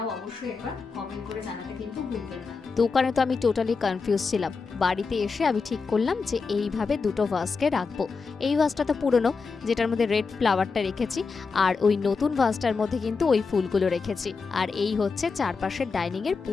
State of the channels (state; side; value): quieter; right; 4.8 dB